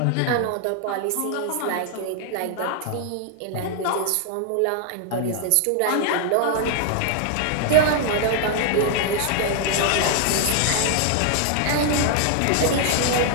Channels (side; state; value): both; different; correlation 0.00